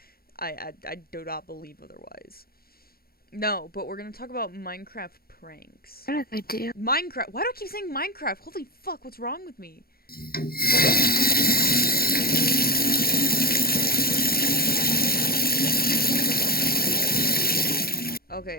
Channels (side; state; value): right; late; 0.44 ms